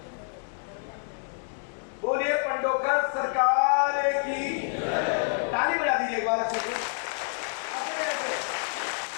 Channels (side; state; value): right; silent; 59 dB below the other